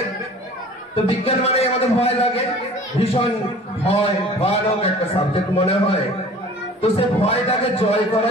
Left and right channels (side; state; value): both; normal; correlation 0.46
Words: তো বিজ্ঞান মানে আমাদের ভয় লাগে, ভীষণ ভয়ানক একটা সাবজেক্ট মনে হয়। তো সে ভয়টাকে জয়